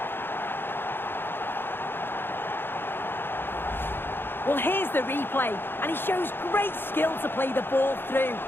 Well, here's the replay, and he shows great skill to play the ball through.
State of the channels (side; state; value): right; late; 0.10 ms